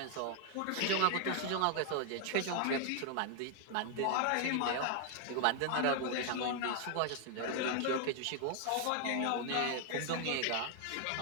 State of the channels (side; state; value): both; different; correlation 0.00